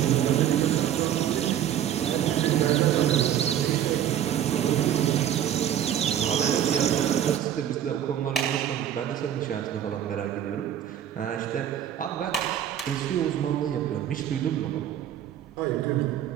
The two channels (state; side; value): quieter; left; 10.5 dB